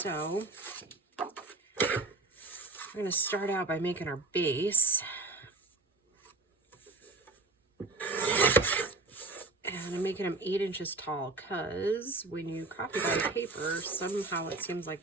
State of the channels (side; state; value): left; quieter; 3.3 dB